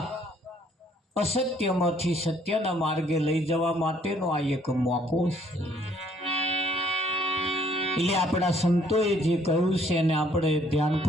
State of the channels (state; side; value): normal; both; correlation 0.63